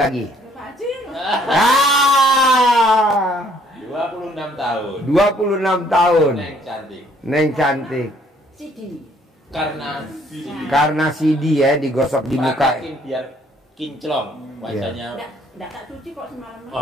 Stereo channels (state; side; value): normal; both; correlation 0.63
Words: lagi. Pak Haji. Ah, 26 tahun. 26 tahun. Neng cantik. Neng cantik. Sidi. Karena CD ya digosok di muka. Praktekin biar kinclong wajahnya. Enggak tak cuci kok semalam.